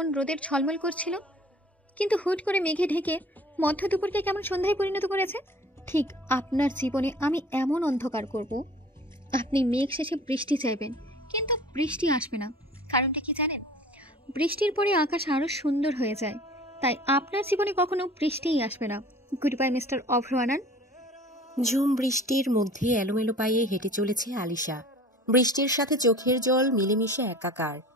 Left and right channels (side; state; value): both; normal; correlation 0.46